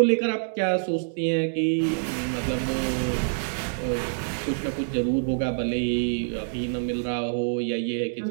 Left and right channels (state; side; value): silent; left; digital silence